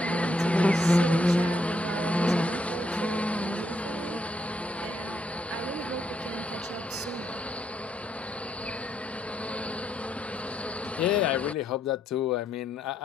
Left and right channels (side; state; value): both; normal; correlation 0.76